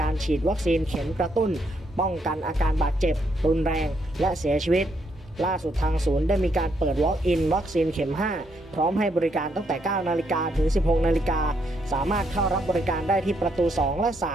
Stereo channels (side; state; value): both; normal; correlation 0.75